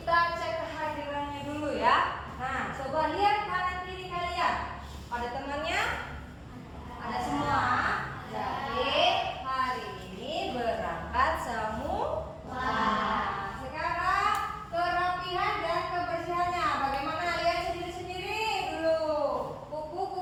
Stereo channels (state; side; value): identical; both; correlation 1.00